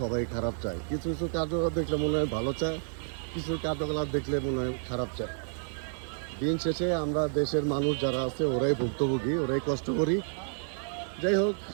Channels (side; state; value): left; silent; 58 dB below the other